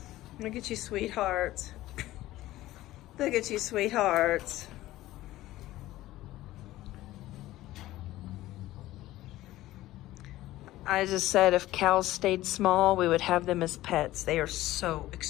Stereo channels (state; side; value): quieter; right; 16.1 dB